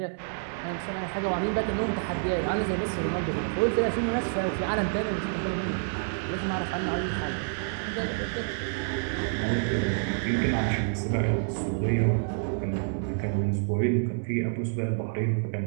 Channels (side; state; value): left; silent; 59 dB below the other